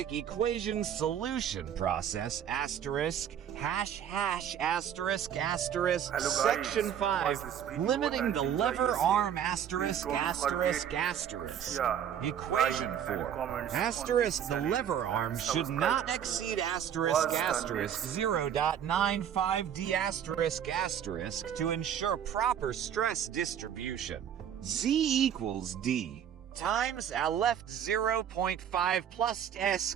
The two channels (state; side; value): quieter; left; 9.2 dB